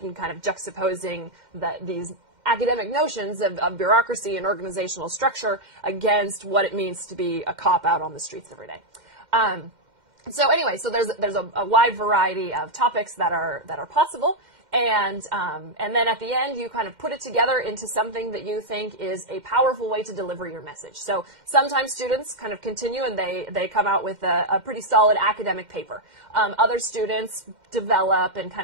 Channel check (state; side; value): late; left; 2.1 ms